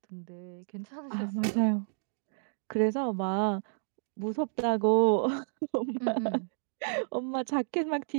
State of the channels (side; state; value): left; silent; digital silence